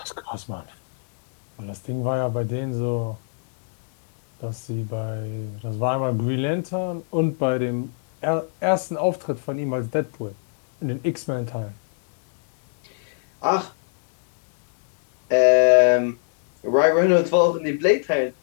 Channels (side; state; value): right; silent; digital silence